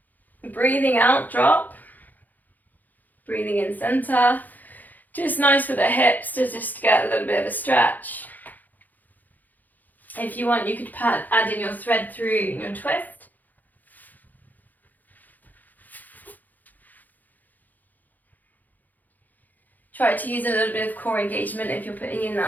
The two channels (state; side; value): late; right; 0.083 ms